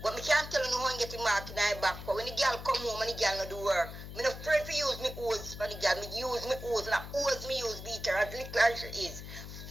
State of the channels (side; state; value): left; noise; hum, 11 dB below the sound